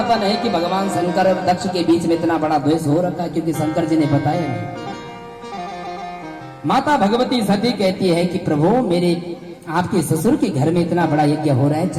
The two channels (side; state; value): both; identical; correlation 1.00